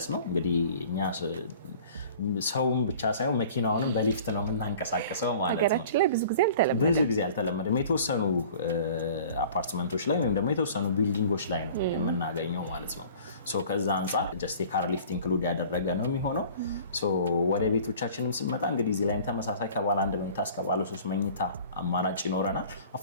ነው። እንግዲህ እኛ ሰውም ብቻ ሳይሆን መኪናውንም በሊፍት ነው የምናንቀሳቀሰው ማለት ነው። ሀገራችን ላይ ብዙ ጊዜ አልተለመደም። የተወሰኑ አፓርትመንቶች ላይ ወይም ደግሞ የተወሰኑ ቢልዲንጎች ላይ ነው የምናገኘው ማለት ነው። ከዛ አንጻር ጀስት የካር ሊፍት ኢንክሉድ ያደረገ ነው የሚሆነው። ወደ ቤቶቻችንም ስንመጣ እንግዲህ እዚህ ላይም ተመሳሳይ ከባለ 1 መኝታ እስከ ባለ 3 መኝታ አማራጭ ይኖረናል።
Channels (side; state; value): both; inverted; correlation -0.47